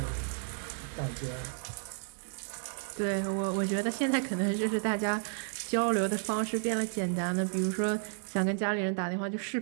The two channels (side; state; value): left; silent; digital silence